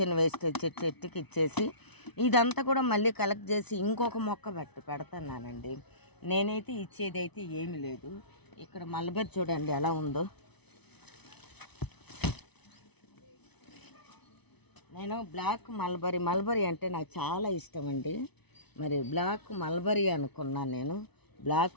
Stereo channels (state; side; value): late; right; 0.99 ms